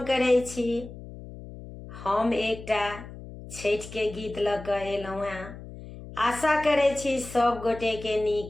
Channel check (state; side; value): noise; left; hum, 14 dB below the sound